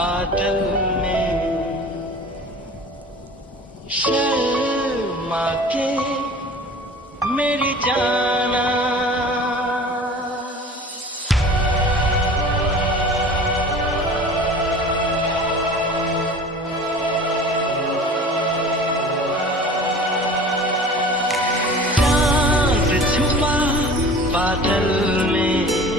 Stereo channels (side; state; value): both; normal; correlation 0.41